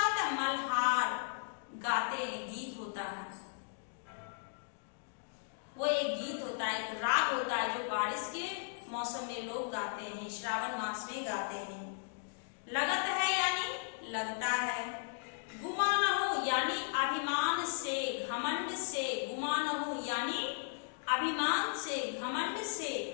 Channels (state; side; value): silent; right; digital silence